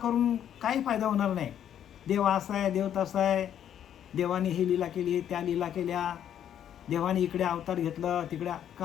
काही फायदा होणार नाही. देव असा आहे, देव तसा आहे, देवाने ही लीला केली, त्या लीला केल्या, देवाने इकडे अवतार घेतलं, तिकडे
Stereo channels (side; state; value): right; quieter; 9.9 dB